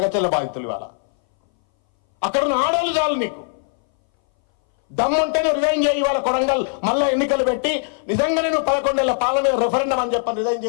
బాధితులు ఇవాళ అక్కడ ఉన్న ఆడవాళ్ళు చాలు. నీకు దమ్ముంటేనే రిజైన్ చేయి. వాళ్ళ కొడంగల్ మళ్ళీ ఎన్నికలు పెట్టి నిజంగానే నువ్వు 11 ఏళ్ల పాలన మీద రెఫరెండం అని చెప్పని రిజైన్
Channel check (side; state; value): right; silent; 61 dB below the other